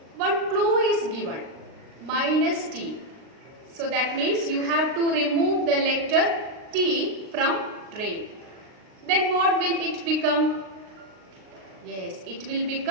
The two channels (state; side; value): late; left; 39 ms